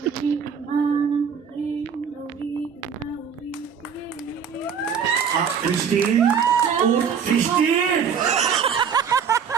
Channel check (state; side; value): quieter; left; 7.0 dB